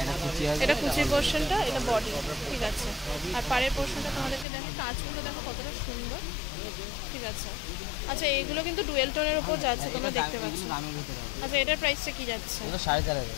এটা কুচির পোরশনটা, এটা বডি। ঠিক আছে। আর পাড়ের পোরশনটা তোমাদেরকে দেখো, কাজগুলো দেখো কতটা সুন্দর। ঠিক আছে। আচ্ছা, এইগুলো কিন্তু ডুয়েল টোনের উপর যাচ্ছে, তোমরা দেখতে পাচ্ছ। আচ্ছা, এটার প্রাইসটা কি যাচ্ছে? 4500।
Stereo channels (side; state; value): right; drops out; at 4.5 s